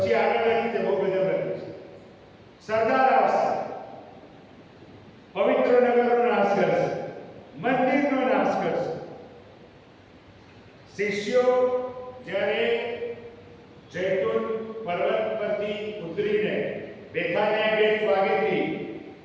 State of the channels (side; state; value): both; identical; correlation 1.00